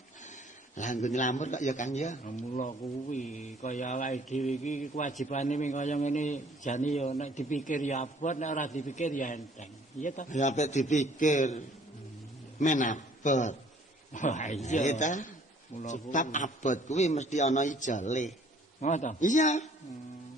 Lah nggo nylamur kok ya Kang ya. Mula kuwi kaya awake dhewe iki kewajibane ming kaya ngene jane ya nek dipikir ya abot nek ora dipikir ya enteng. Iya ta? Ya apik dipikir. Men abot. Wah Iya iya. ta? Mula Sebab abot kuwi mesti ana ijole. ngono. Iya.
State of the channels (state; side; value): normal; both; correlation 0.58